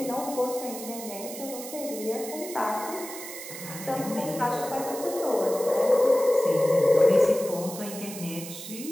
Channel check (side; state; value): right; noise; hiss, 11 dB below the sound